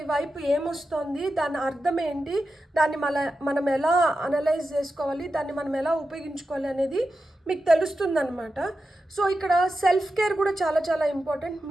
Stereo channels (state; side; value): normal; both; correlation 0.90